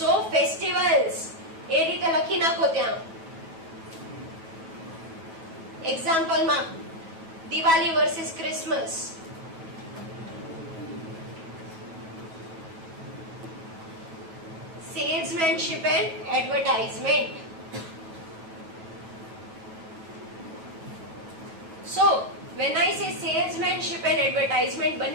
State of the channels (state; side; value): late; left; 9.2 ms